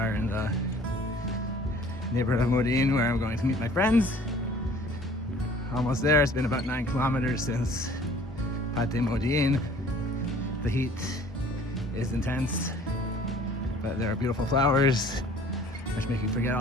in the neighborhood of Modiin, where I'm going to meet my friends. Almost there. It's been about 9 kilometers since Modiin. The heat is intense, but there are beautiful flowers which make you forget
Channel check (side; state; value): both; normal; correlation 0.52